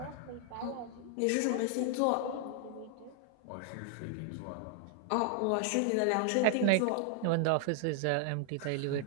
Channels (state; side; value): different; both; correlation 0.00